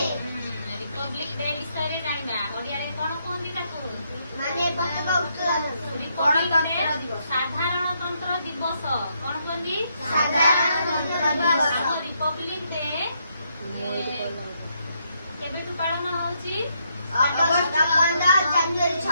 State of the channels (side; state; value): both; inverted; correlation -0.76